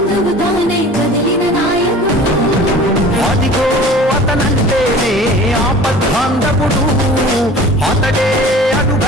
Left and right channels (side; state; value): both; normal; correlation 0.43